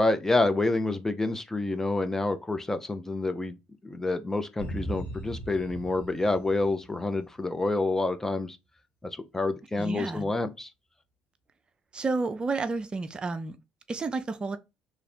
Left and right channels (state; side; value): normal; both; correlation 0.88